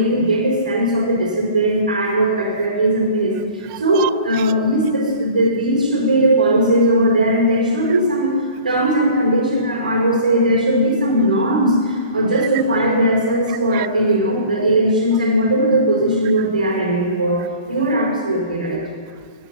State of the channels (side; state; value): both; inverted; correlation -0.46